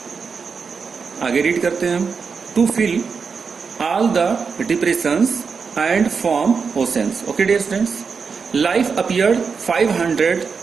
आगे रीड करते हैं हम, to fill all the depressions and form oceans. Okay dear students, life appeared 500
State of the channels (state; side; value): quieter; left; 5.5 dB